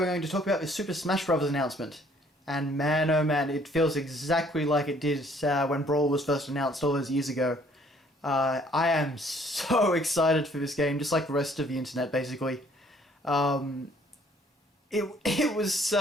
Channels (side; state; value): both; normal; correlation 0.61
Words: going to talk about the Super Smash Bros. Announcement. And man, oh man, it feels exactly like it did when Brawl was first announced all those years ago. I am so excited for this game, just like the rest of the internet, basically. It was